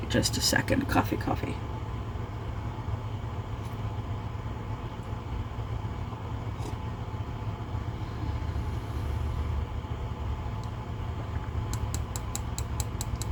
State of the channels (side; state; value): both; identical; correlation 1.00